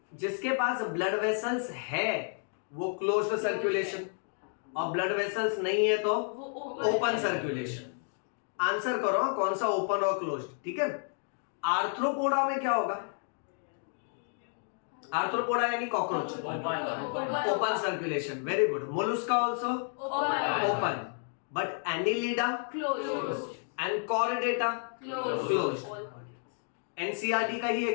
जिसके पास ब्लड वेसल्स है वो क्लोज्ड सर्कुलेशन, और ब्लड वेसल्स नहीं है तो ओपन सर्कुलेशन। आंसर करो कौन सा ओपन और क्लोज्ड, ठीक है? आर्थ्रोपोडा में क्या होगा? आर्थ्रोपोडा यानी cockroach, open circulation. Very good. Mollusca also open, but annelida Closed. And chordata Closed. NCERT का ही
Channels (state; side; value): silent; right; 57 dB below the other